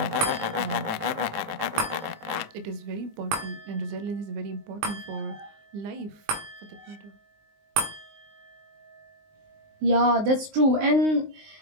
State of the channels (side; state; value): left; late; 20 ms